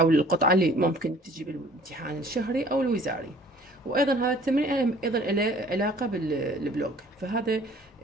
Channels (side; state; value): both; normal; correlation 0.52